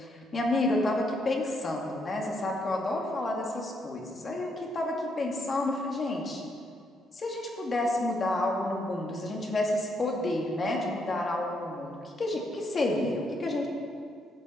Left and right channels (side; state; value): both; normal; correlation 0.76